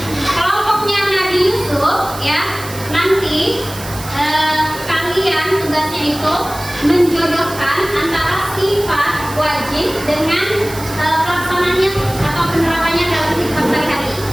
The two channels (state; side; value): noise; right; hiss, 13 dB below the sound